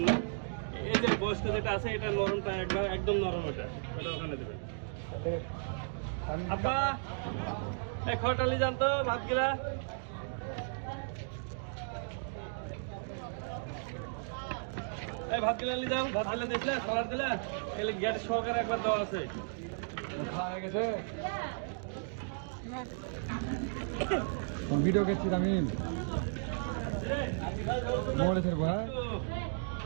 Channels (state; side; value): silent; left; digital silence